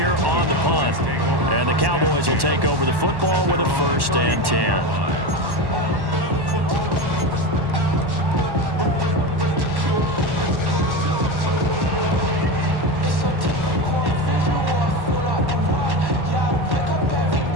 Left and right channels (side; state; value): left; late; 1.1 ms